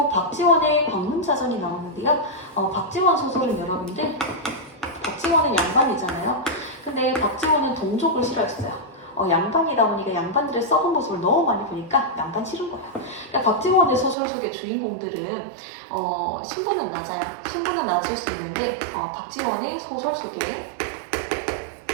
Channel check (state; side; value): drops out; left; at 14.2 s